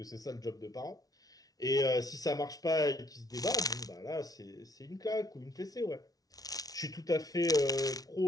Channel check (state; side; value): late; right; 0.18 ms